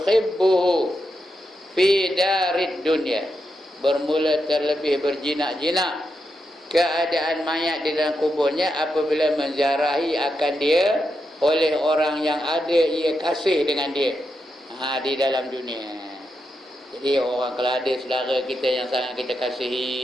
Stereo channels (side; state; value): both; normal; correlation 0.85